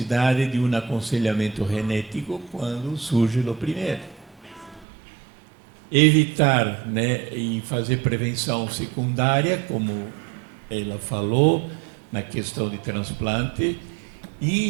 de um aconselhamento genético quando surge o primeiro. Evitar, e fazer prevenção secundária, como ela falou, na questão de transplante,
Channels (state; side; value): drops out; left; at 4.9 s